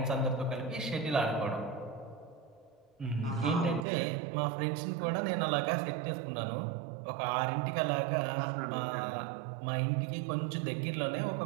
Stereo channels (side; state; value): left; drops out; at 3.9 s